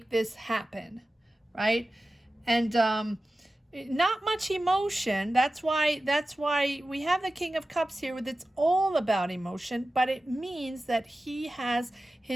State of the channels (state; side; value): normal; both; correlation 0.95